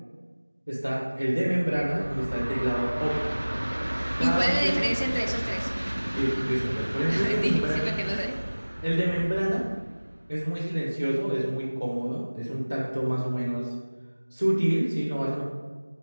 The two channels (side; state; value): both; inverted; correlation -1.00